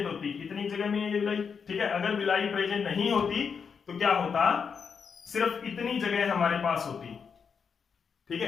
होती, इतनी जगह में ये विलाई, ठीक है, अगर विलाई प्रेजेंट नहीं होती तो क्या होता, सिर्फ इतनी जगह हमारे पास होती, ठीक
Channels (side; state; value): right; quieter; 6.2 dB